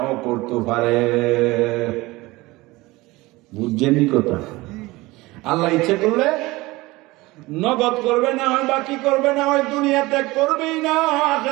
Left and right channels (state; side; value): quieter; left; 20.8 dB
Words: করতে পারে। বুঝছেনই কথা? আল্লাহ ইচ্ছা করলে নগদ করবে, না হয় বাকি করবে, না হয় দুনিয়াতে করবেই না,